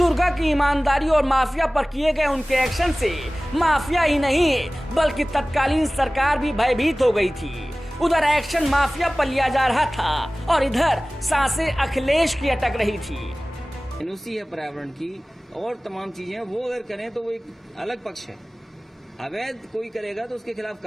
की ईमानदारी और माफिया पर किए गए उनके एक्शन से माफिया ही नहीं बल्कि तत्कालीन सरकार भी भयभीत हो गई थी। उधर एक्शन माफिया पर लिया जा रहा था और इधर सांसें अखिलेश की अटक रही थी। एनओसी है पर्यावरण की और तमाम चीजें, वो अगर करें तो वो एक अलग पक्ष है। अवैध कोई करेगा तो उसके खिलाफ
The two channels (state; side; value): normal; both; correlation 0.98